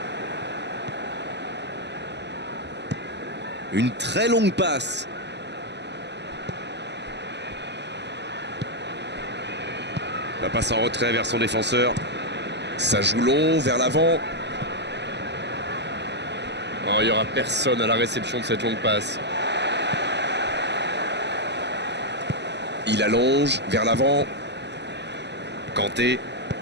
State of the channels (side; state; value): left; late; 0.50 ms